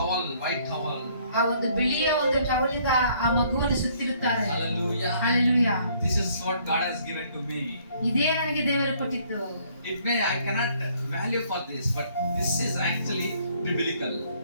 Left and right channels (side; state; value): both; inverted; correlation -0.63